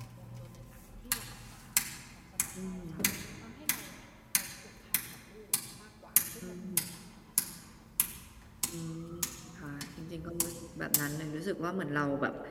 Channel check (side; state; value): both; identical; correlation 1.00